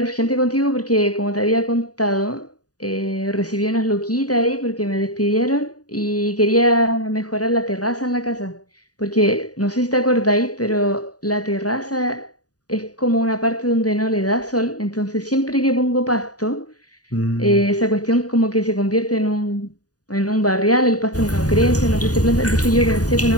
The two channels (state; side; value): late; right; 0.68 ms